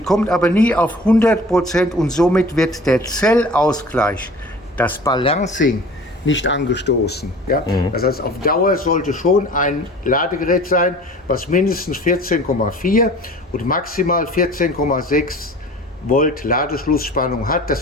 aber nie auf 100% und somit wird der Zellausgleich, das Balancing, nicht angestoßen. Ja? Das heißt, auf Dauer sollte schon ein Ladegerät sein, was mindestens 14,4 und maximal 14,6 Volt Ladeschlussspannung hat. Das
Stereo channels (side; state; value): both; normal; correlation 0.44